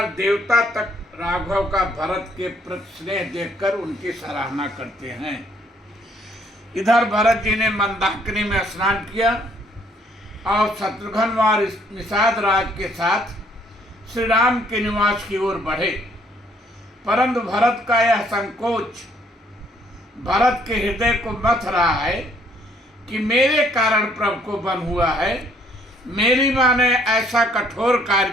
देवता तक राघव का भरत के प्रति स्नेह देखकर उनकी सराहना करते हैं। इधर भरत जी ने मंदाकिनी में स्नान किया और शत्रुघ्न और निषाद राज के साथ श्री राम के निवास की ओर बढ़े। परंतु भरत का यह संकोच भरत के हृदय को मथ रहा है कि मेरे कारण प्रभु को बन हुआ है। मेरी माँ ने ऐसा कठोर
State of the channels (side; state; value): both; normal; correlation 0.65